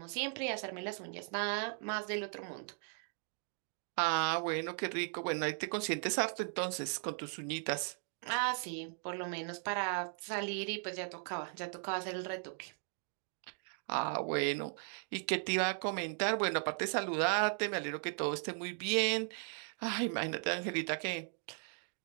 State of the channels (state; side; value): silent; left; 53 dB below the other